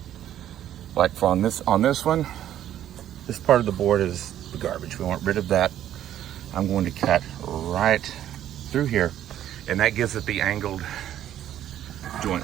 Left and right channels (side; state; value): left; quieter; 11.5 dB